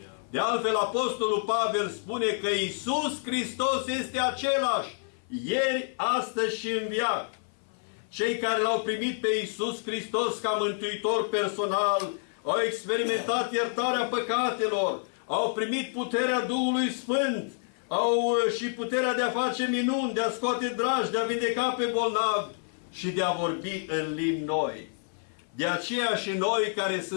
De altfel, Apostolul Pavel spune că Iisus Hristos este același ieri, astăzi și în veac. Cei care L-au primit pe Iisus Hristos ca mântuitor personal au experimentat iertarea păcatelor, au primit puterea Duhului Sfânt, au și puterea de a face minuni, de a scoate dragi, de a vindeca pe bolnavi și de a vorbi în limbi noi. De aceea și noi, care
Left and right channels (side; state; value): right; silent; 56 dB below the other